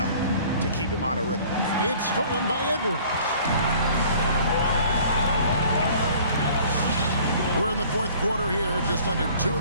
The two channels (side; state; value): both; inverted; correlation -0.51